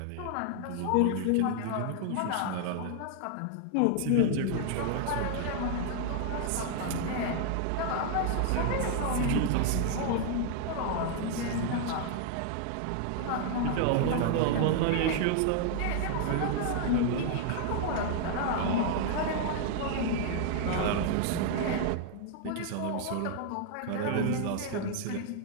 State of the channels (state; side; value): different; both; correlation 0.00